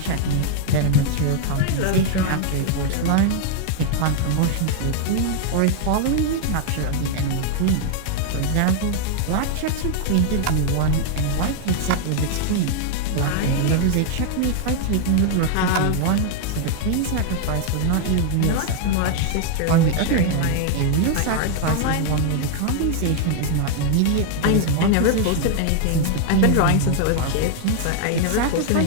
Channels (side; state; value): both; different; correlation 0.00